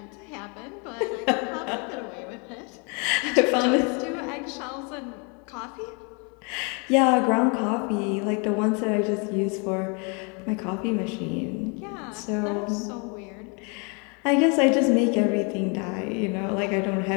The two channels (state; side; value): quieter; right; 34.2 dB